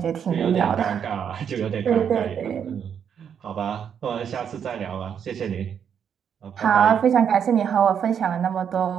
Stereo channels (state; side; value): quieter; left; 8.0 dB